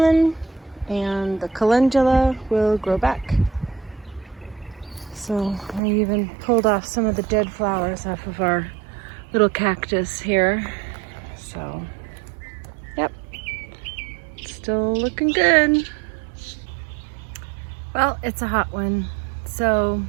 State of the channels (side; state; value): left; drops out; at 5.8 s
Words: and the calendula will grow back. So I even pulled off some of the dead flowers off of our little cactus here. So, yep, still looking good. Well, it's a hot one, so